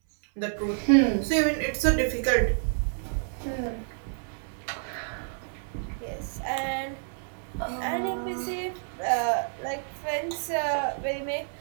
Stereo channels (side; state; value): left; silent; 59 dB below the other